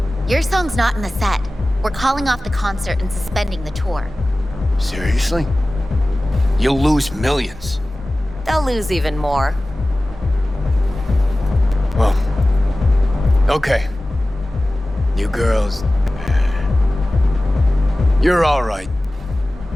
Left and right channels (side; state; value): both; normal; correlation 0.96